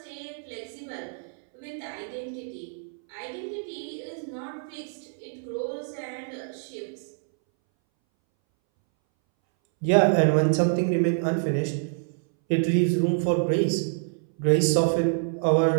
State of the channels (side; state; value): left; silent; 61 dB below the other